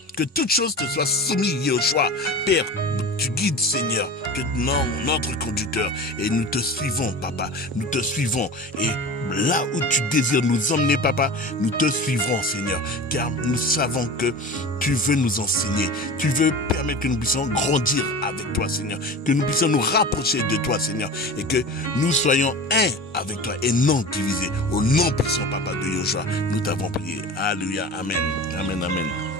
que toute chose te soit soumise, Yoshua. Père, tu guides, Seigneur, que notre conducteur, et nous te suivons, Papa, nous te suivons, et là où tu désires nous emmener, Papa, nous te suivrons, Seigneur, car nous savons que tu veux nous enseigner, tu veux permettre que nous puissions grandir avec toi, Seigneur, que nous puissions nous rapprocher de toi, Seigneur, et que nous soyons un avec toi et non divisés. Au nom puissant, Papa, de Yoshua, nous t'avons prié. Alléluia, amen, amen, amen.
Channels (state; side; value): normal; both; correlation 0.34